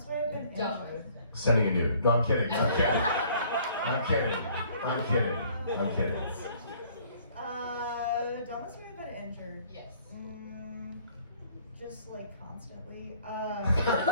way I've been Dumb. injured. Sending a nude. No, I'm kidding. Dumbest way I've been injured. Yes. Just like constantly.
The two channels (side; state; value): both; inverted; correlation -0.57